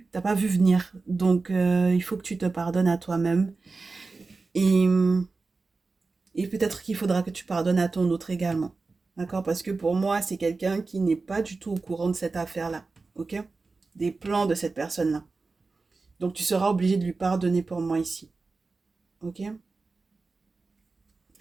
venir. Donc, il faut que tu te pardonnes à toi-même. Et, et peut-être qu'il faudra que tu pardonnes à ton autre également. D'accord? Parce que pour moi, c'est quelqu'un qui n'est pas du tout au courant de cette affaire-là. Ok? Des plans de cette personne-là. Donc, tu seras obligé de lui pardonner pour moi ici. Ok?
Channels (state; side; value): quieter; left; 3.9 dB